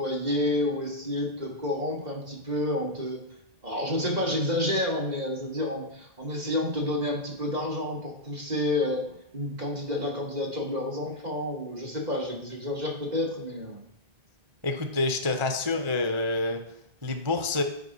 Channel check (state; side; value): late; left; 1.9 ms